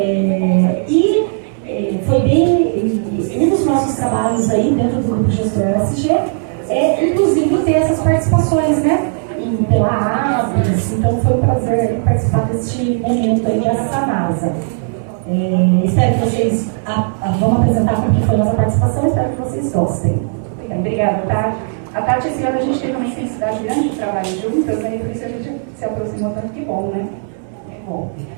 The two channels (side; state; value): left; silent; digital silence